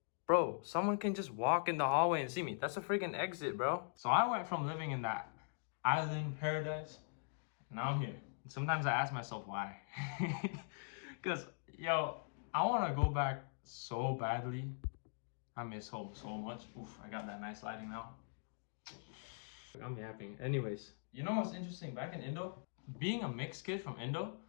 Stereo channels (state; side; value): silent; right; digital silence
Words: Bro, someone can just walk in the hallway and see me. That's a freaking exit, bro. So I went from living in that island paradise, now I'm here. Sometimes I ask myself why. Because, yo, I want to go back so badly. I miss home so much. Oof, I got that nice lighting now. I'm yapping. Anyways, you know what's interesting? Back in Indo, being a mixed kid from Indo,